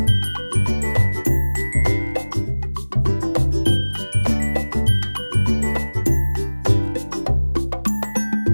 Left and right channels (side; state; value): both; inverted; correlation -1.00